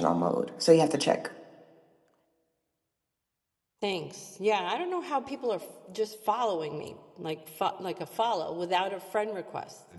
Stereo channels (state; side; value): identical; both; correlation 1.00